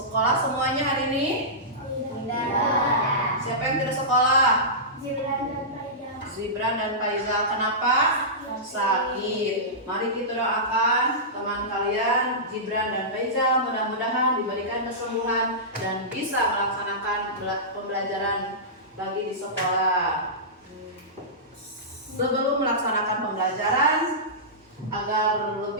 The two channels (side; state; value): both; normal; correlation -0.17